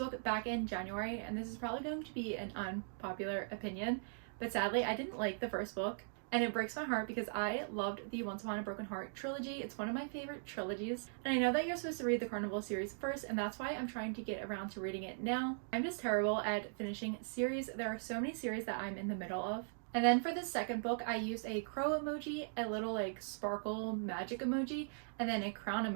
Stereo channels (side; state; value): left; silent; digital silence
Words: back in January, and this is probably going to be an unpopular opinion, but sadly I didn't like the first book. and it breaks my heart because I loved the Once Upon a Broken Heart trilogy. It's one of my favorite trilogies, and I know that you're supposed to read the Carnival series first, and that's why I'm trying to get around to reading it now. I'm just terrible at finishing series. There are so many series that I'm in the middle of. And then for this second book, I used a crow emoji, a little like sparkle magic emoji, and then a crown